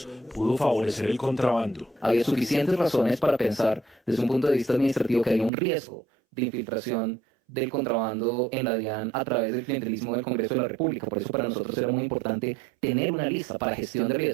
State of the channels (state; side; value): drops out; left; at 5.5 s